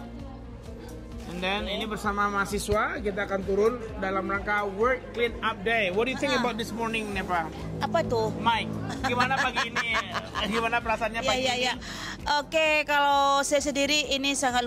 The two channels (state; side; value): identical; both; correlation 1.00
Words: And then ini bersama mahasiswa kita akan turun dalam rangka World Clean Up Day. What do you think about this morning, Nepa? Apa tuh? Mike, gimana pagi ini? Gimana perasaannya pagi ini? Oke, kalau saya sendiri ini sangat